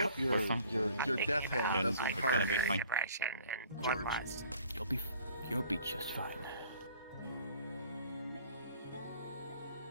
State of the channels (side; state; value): both; inverted; correlation -0.53